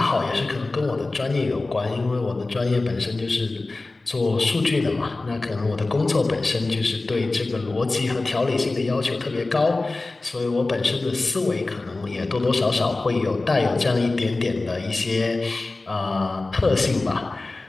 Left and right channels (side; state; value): right; quieter; 3.2 dB